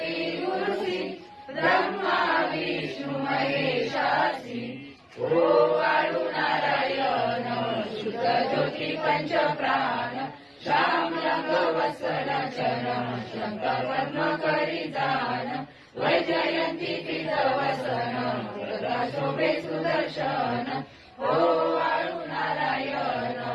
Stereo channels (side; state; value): both; identical; correlation 1.00